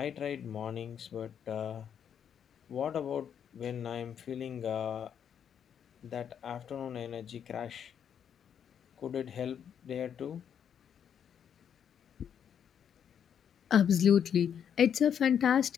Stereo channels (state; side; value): quieter; right; 8.4 dB